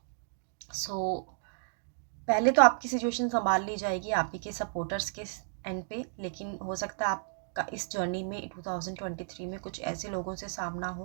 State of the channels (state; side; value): silent; left; digital silence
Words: सो पहले तो आपकी सिचुएशन संभाल ली जाएगी आप ही के सपोर्टर्स के एंड पे, लेकिन हो सकता है आपका इस जर्नी में 2023 में कुछ ऐसे लोगों से सामना